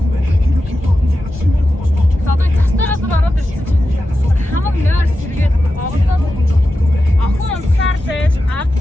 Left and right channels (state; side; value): normal; both; correlation 0.91